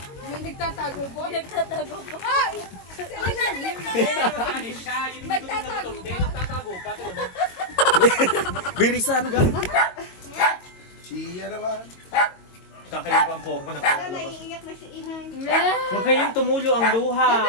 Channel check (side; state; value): right; late; 22 ms